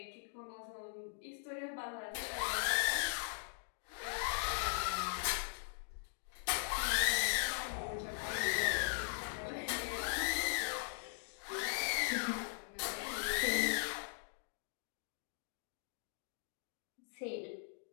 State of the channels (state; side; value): silent; right; digital silence